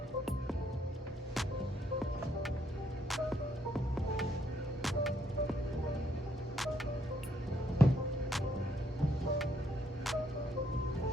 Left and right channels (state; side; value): normal; both; correlation 0.72